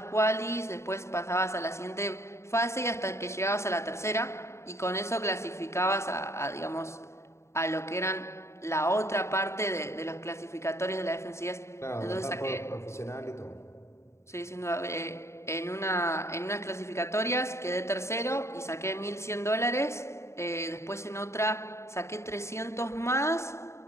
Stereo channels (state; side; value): late; right; 0.13 ms